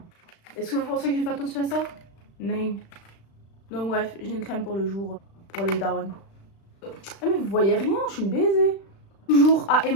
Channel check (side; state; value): right; late; 36 ms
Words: Est-ce que vous pensez que j'ai fait attention à ça? Non. Donc bref, j'ai une crème pour le jour, pour les darons. Ah mais vous voyez rien, je suis une baisée. Toujours à